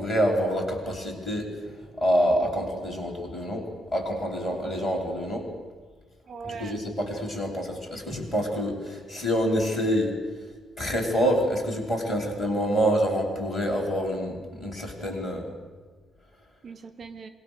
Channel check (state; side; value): normal; both; correlation 0.72